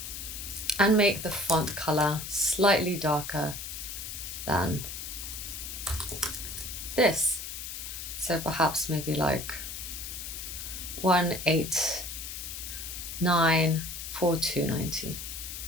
And make the font color slightly darker than this. So perhaps maybe like 189 4290.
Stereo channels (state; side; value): noise; left; hiss, 7 dB below the sound